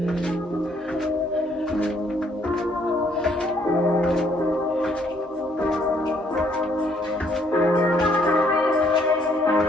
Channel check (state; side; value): normal; both; correlation 0.67